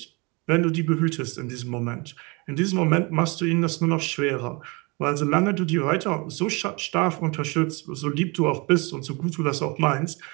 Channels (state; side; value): quieter; left; 28.3 dB